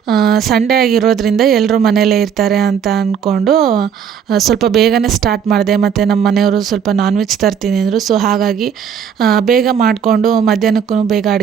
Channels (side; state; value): left; quieter; 7.7 dB